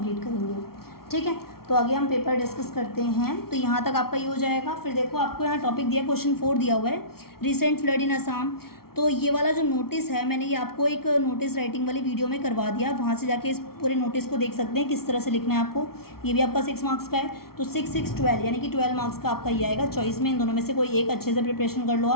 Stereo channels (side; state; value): right; late; 0.94 ms